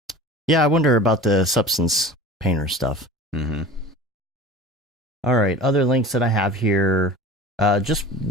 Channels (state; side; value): normal; both; correlation 0.38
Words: yeah, I wonder about the substance painter stuff. Mm-hmm. All right, other links that I have here. Just